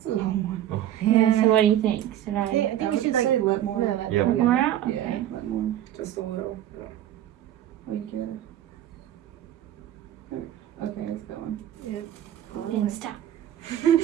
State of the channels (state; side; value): quieter; left; 11.9 dB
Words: long one. Yeah. So what do you think? Should Yeah, I I think I we would should like. say let more. No, Yeah, put more out? Yeah, Okay. let more. Just a little. Oh, you get it. Okay, it's going. Then stop.